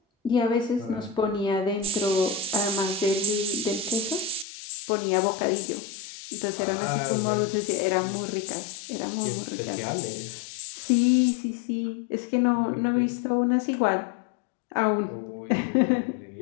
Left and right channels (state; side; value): drops out; right; at 4.5 s